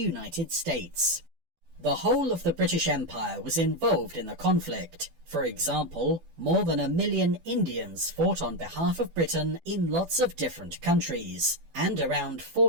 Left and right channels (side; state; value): left; late; 12 ms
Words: States. The whole of the British Empire was involved in the conflict. For example, more than 1 million Indians fought on behalf of Britain in lots of different countries, and around